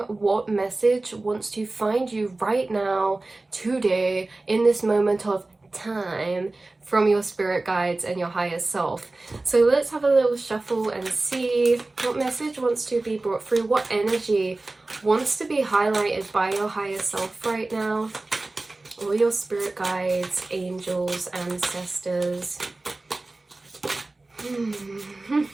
what message wants to find you right now, today, in this moment of time, from your spirit guides and your higher self. So let's have a little shuffle and see what message wants to be brought through, what energy wants to be highlighted by your higher self right now. All your spirit guides, angels, ancestors.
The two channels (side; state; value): left; quieter; 3.1 dB